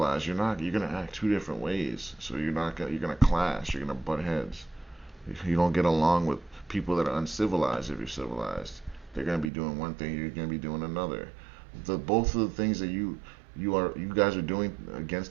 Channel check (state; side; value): drops out; left; at 9.5 s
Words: you're gonna act two different ways. So you're gonna clash. You're gonna butt heads. You don't get along with people that are uncivilized if you're civilized. They're gonna be doing one thing, you're gonna be doing another. Both of the things that you guys are doing